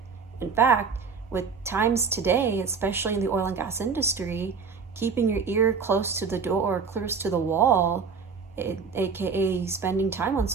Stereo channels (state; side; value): quieter; left; 5.5 dB